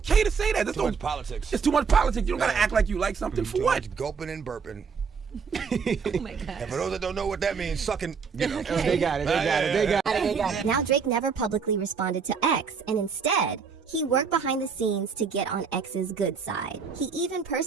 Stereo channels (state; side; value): quieter; left; 5.8 dB